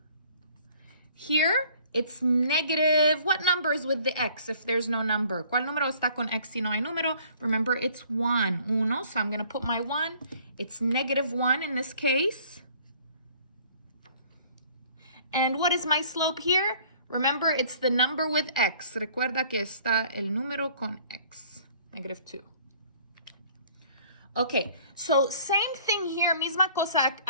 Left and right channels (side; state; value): both; inverted; correlation -0.55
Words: Here, it's negative, what number is with the x if there's no number? ¿Cuál número está con x si no hay número? Remember, it's 1, uno, so I'm going to put my 1. It's negative 1 in this case. And what is my slope here? Remember, it's the number with x. Recuerda que está el número con x, negative 2. Okay, so same thing here, misma cosa